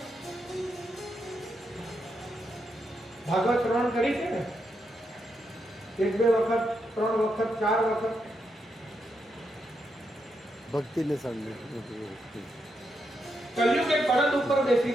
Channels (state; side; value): normal; both; correlation 0.82